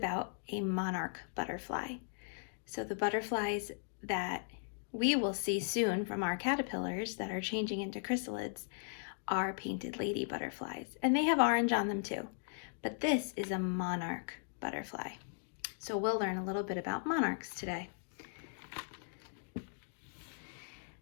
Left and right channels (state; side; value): silent; right; digital silence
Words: a monarch butterfly. So the butterflies that we will see soon from our caterpillars that are changing into chrysalids are painted lady butterflies, and they have orange on them too. But this is a monarch butterfly. So we'll learn a little bit about monarchs today.